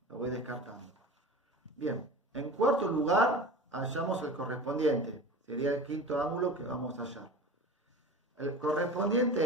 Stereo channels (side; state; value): both; normal; correlation 0.35